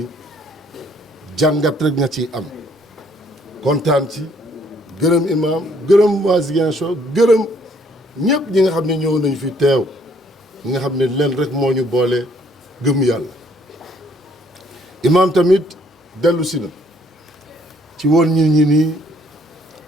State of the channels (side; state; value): both; normal; correlation 0.64